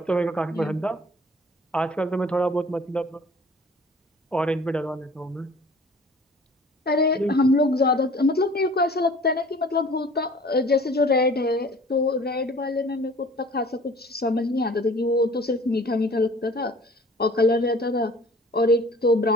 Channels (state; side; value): normal; both; correlation 0.49